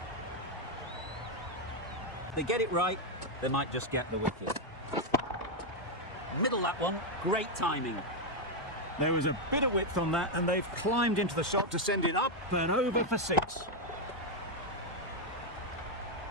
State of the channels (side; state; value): both; normal; correlation 0.01